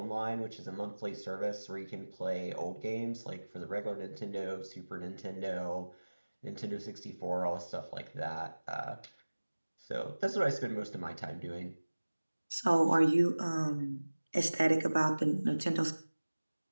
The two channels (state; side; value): inverted; both; correlation -1.00